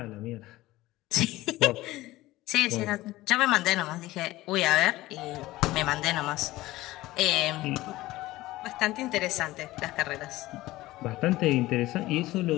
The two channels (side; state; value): right; quieter; 17.7 dB